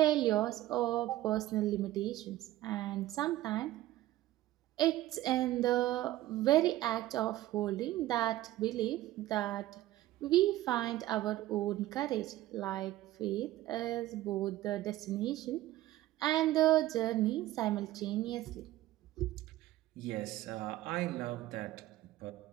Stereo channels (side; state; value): left; quieter; 15.4 dB